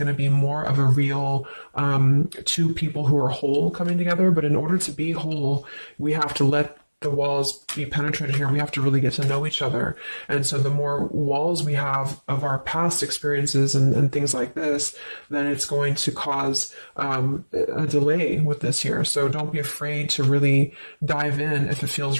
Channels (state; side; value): inverted; both; correlation -1.00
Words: to be more of a real two people who are whole coming together. But in order to be whole, we have to let the walls be penetrated here. We have to really get to know each other. And so the more walls we have of our past experiences and things like this, then it's going to cause a delay with this here. So don't be afraid to really dive in if it